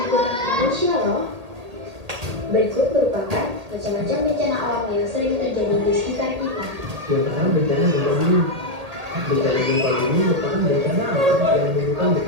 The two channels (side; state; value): left; late; 1.8 ms